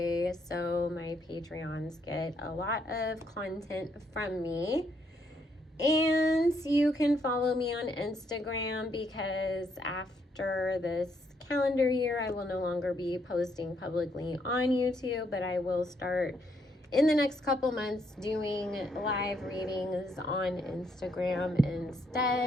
So my Patreons get a lot of content from me. And you can follow me on Instagram, because after this calendar year, I will no longer be posting publicly on YouTube, but I will start in the next couple months doing live readings on Instagram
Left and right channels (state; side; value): normal; both; correlation 0.73